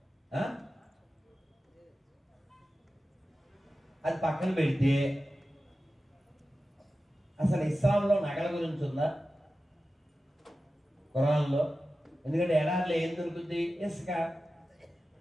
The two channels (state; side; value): normal; both; correlation 0.94